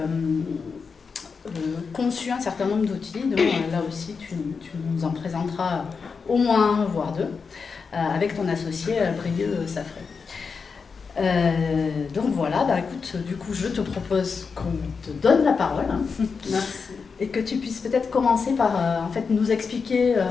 conçu un certain nombre d'outils, donc là aussi, tu nous en présenteras au moins un, voire deux, avec ton associé Brieux Safré. Donc voilà, écoute, du coup, je te propose qu'on te donne la parole. Merci. Et que tu puisses peut-être commencer par en fait, nous expliquer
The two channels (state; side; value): quieter; right; 5.3 dB